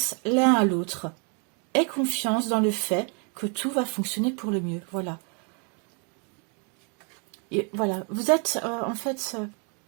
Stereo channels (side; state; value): left; quieter; 37.3 dB